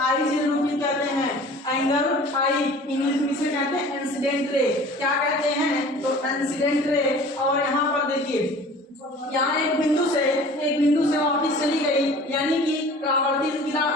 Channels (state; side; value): normal; both; correlation 0.45